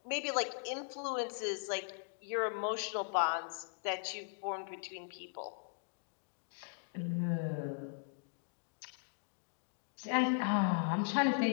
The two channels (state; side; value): silent; right; digital silence